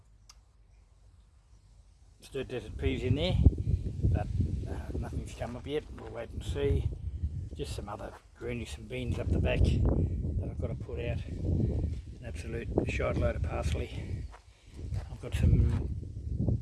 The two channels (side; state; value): both; identical; correlation 1.00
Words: stirred desert peas in there, but nothing's come up yet. We'll wait and see. Just some other greenies, some beans up the back that I've got to put out. An absolute shite load of parsley. I've got some,